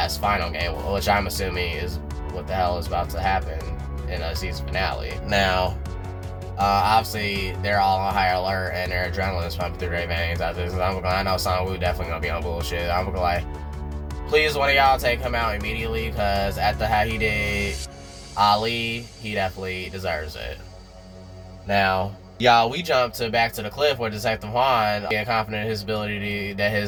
final game, which I'm assuming is what the hell is about to happen in a season finale. Now, obviously they're all on high alert and their adrenaline is pumping through their veins after this. I know Sang-woo definitely gonna be on bullshit. I'm gonna like, please one of y'all take him out immediately, because after how he did Ali, he definitely deserves it. Now, y'all, we jump back to the cliff where Detective Juan getting confident in his ability that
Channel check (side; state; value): both; identical; correlation 1.00